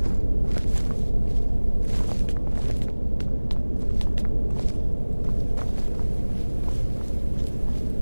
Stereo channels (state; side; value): inverted; both; correlation -1.00